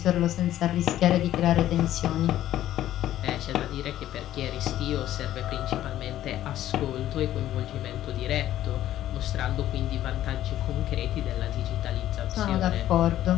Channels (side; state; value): right; quieter; 12.9 dB